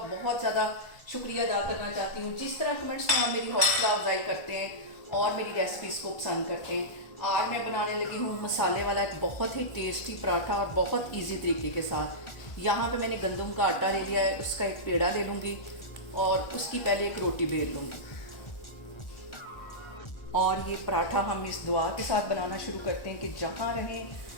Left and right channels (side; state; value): right; late; 1.4 ms